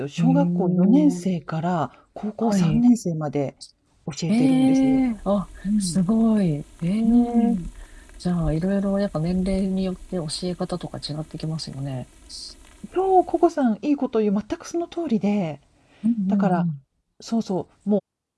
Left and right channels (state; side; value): identical; both; correlation 1.00